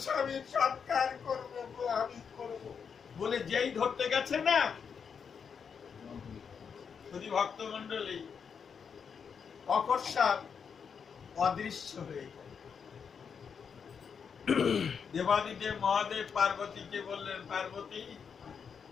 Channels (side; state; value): right; quieter; 6.6 dB